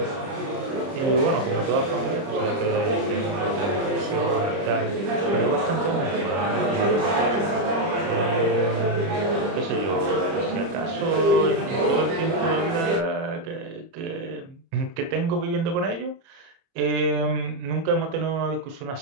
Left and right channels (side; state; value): left; late; 30 ms